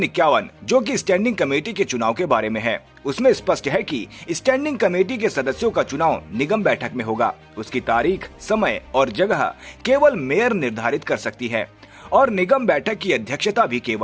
51, जो कि स्टैंडिंग कमेटी के चुनाव के बारे में है, उसमें स्पष्ट है कि स्टैंडिंग कमेटी के सदस्यों का चुनाव निगम बैठक में होगा। उसकी तारीख, समय और जगह केवल मेयर निर्धारित कर सकती है और निगम बैठक की अध्यक्षता भी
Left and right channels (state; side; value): identical; both; correlation 1.00